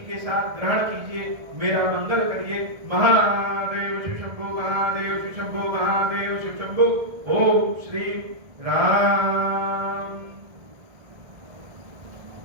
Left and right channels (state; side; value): late; left; 1.7 ms